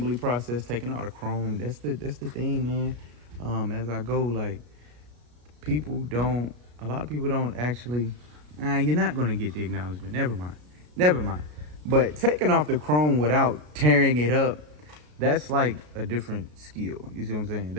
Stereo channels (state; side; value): late; left; 33 ms